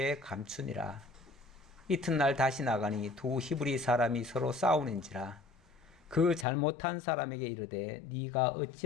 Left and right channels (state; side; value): drops out; right; at 6.5 s